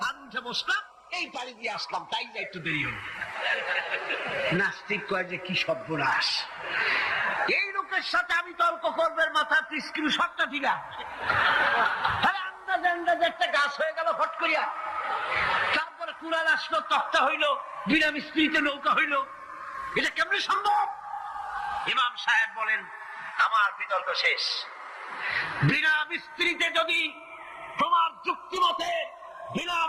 আর উঠে বসলাম, এই পাড়ি দিয়ে আসলাম, তাই না একটু দেরি হলো। নাস্তিক কয় যে কি সর্বনাশ, এই লোকের সাথে আমি তর্ক করবে, মাথা স্ক্রু শটটা ঠিক আছে। আন্দাজে আন্দাজে একটা গাছ হয়ে গেল ফট করিয়া, তারপরে কুড়াল আসলো, তক্তা হইলো, বিনা মিস্ত্রিতে নৌকা হইলো, এটা কেমনে সম্ভব? ইমাম সাহেব বলেন, আমার বিতর্ক শেষ। বিনা মিস্ত্রিতে যদি, তোমার যুক্তি মতে বিনা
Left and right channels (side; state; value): both; identical; correlation 1.00